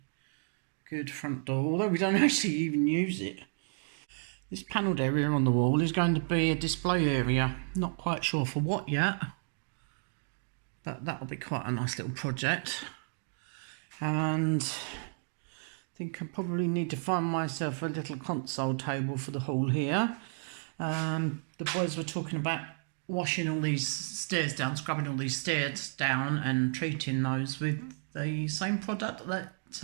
good front door, although we don't actually even use it. This panelled area on the wall is going to be a display area. Not quite sure for what yet, but that'll be quite a nice little project. And I think I probably need to find myself a little console table for the hall here. The boys were talking about washing all these stairs down, scrubbing all these stairs down and treating those with the same product that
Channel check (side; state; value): left; silent; 56 dB below the other